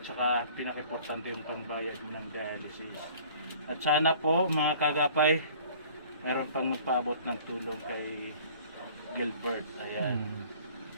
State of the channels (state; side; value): inverted; both; correlation -0.50